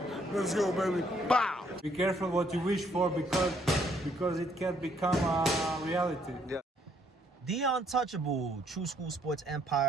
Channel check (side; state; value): both; normal; correlation 0.68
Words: Let's go, baby. Bow! Be careful what you wish for because it can become a reality. Yeah. The untouchable true school sports